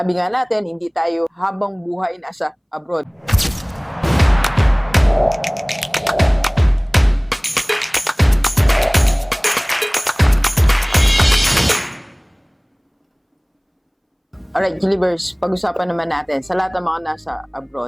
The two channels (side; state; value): both; identical; correlation 1.00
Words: nga natin, hindi tayo habang buhay nasa abroad. Alright, Gilibers, pag-usapan naman natin sa lahat ng mga nasa